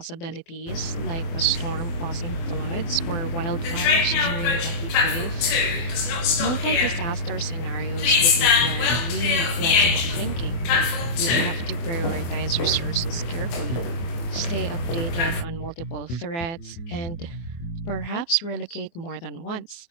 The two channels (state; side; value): late; right; 24 ms